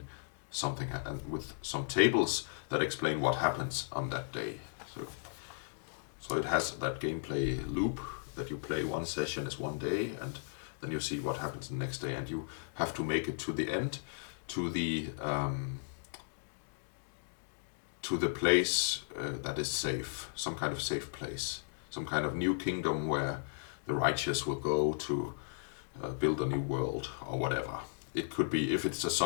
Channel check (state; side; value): silent; right; digital silence